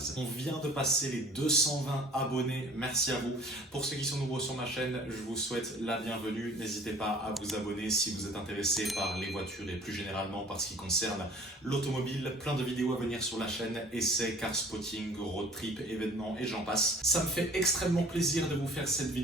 On vient de passer les 220 abonnés, merci à vous. Pour ceux qui sont nouveaux sur ma chaîne, je vous souhaite la bienvenue. N'hésitez pas à vous abonner si vous êtes intéressé par les voitures et plus généralement par ce qui concerne l'automobile. Plein de vidéos à venir sur la chaîne, essais, car spotting, road trip, événements et j'en passe. Ça me fait extrêmement plaisir de vous faire cette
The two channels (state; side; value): normal; both; correlation 0.50